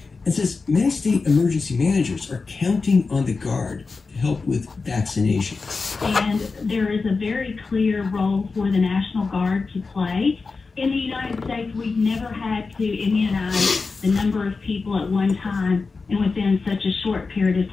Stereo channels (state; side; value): quieter; right; 4.3 dB